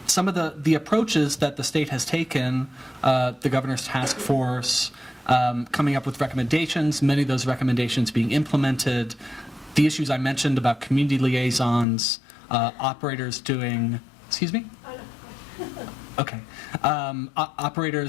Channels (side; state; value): right; drops out; at 11.9 s